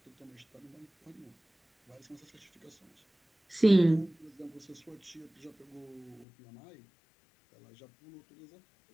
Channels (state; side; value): drops out; right; at 6.2 s